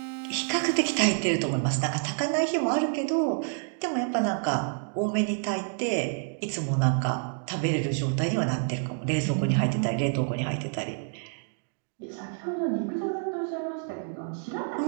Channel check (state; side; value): silent; left; 59 dB below the other